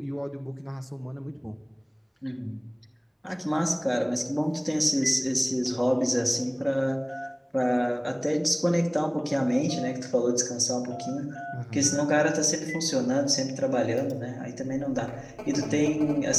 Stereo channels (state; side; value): identical; both; correlation 1.00